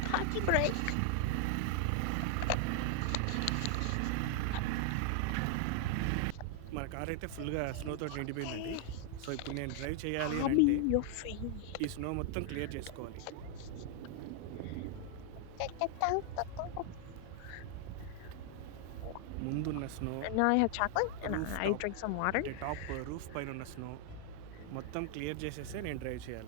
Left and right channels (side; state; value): both; different; correlation 0.00